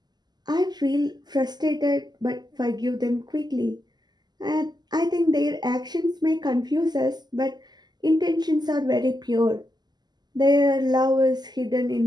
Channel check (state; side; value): late; left; 0.20 ms